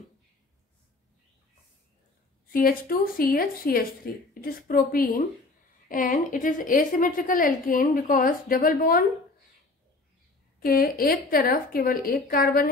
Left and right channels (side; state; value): right; quieter; 3.3 dB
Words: CH2, CH, CH3, it is propene and it is asymmetrical alkane because double bond के एक तरफ केवल एक carbon